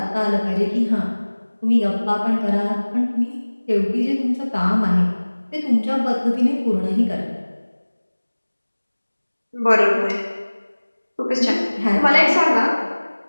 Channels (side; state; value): both; inverted; correlation -1.00